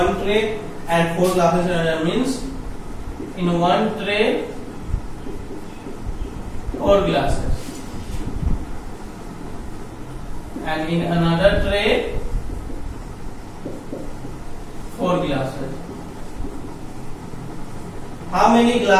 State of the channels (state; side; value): identical; both; correlation 1.00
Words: tray and 4 glasses in another. Means in one tray 4 glasses and in another tray 4 glasses. How many